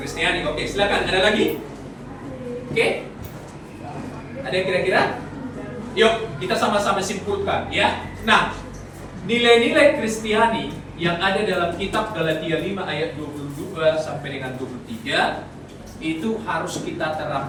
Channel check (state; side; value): identical; both; correlation 1.00